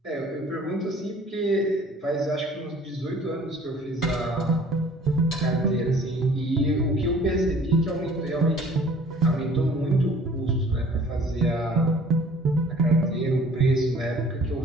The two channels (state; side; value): normal; both; correlation 0.52